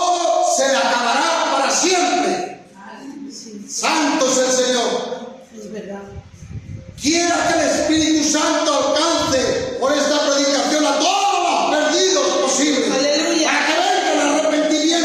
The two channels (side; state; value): both; identical; correlation 1.00